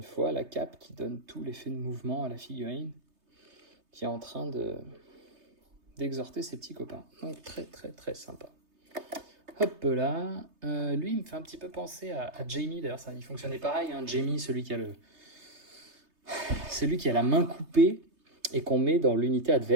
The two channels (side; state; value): left; late; 3.3 ms